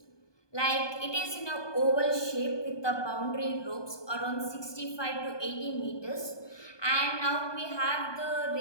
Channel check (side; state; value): right; late; 1.2 ms